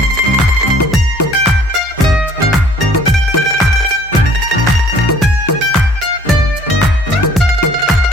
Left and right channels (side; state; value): both; normal; correlation 0.55